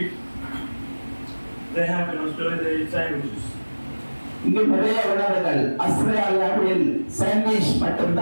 They have in Australia, they eat sandwiches. இங்கு நிறைய உணவுகள் ஆஸ்திரேலியாவில் சாண்ட்விச்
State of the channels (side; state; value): both; inverted; correlation -1.00